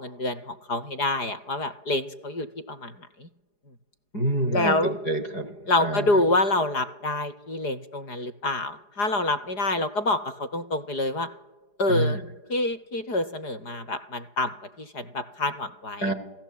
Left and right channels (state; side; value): late; right; 4.8 ms